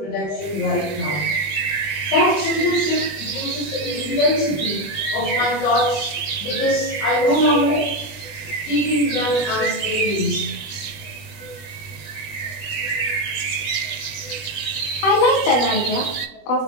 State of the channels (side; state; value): right; late; 20 ms